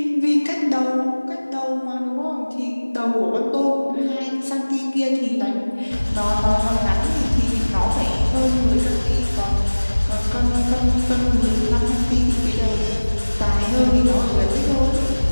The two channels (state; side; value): inverted; both; correlation -1.00